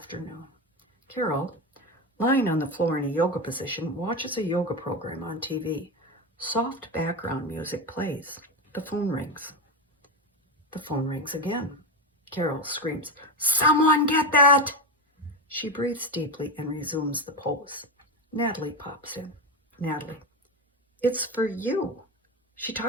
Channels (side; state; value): both; normal; correlation 0.16